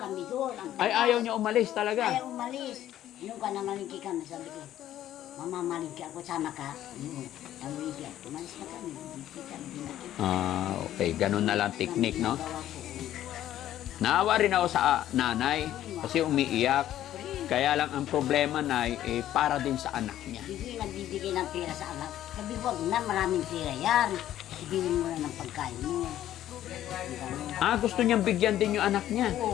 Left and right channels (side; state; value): right; quieter; 12.5 dB